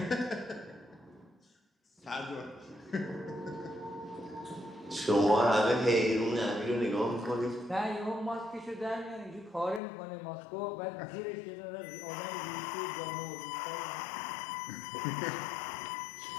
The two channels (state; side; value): drops out; right; at 9.8 s